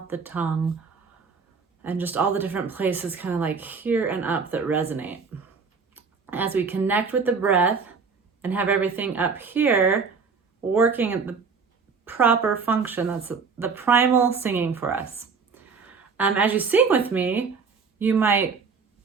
the tongue, and just all the different places kind of like here and up that resonate. As we connect with the breath and have everything up here working at the proper function, that's the primal singing for us. As you sing with me, you might,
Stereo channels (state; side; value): quieter; left; 5.2 dB